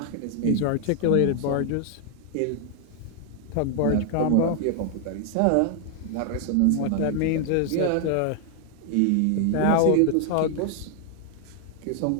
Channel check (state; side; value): different; both; correlation 0.00